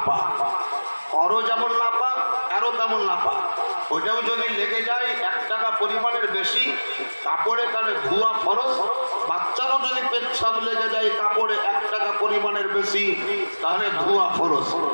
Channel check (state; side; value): inverted; both; correlation -1.00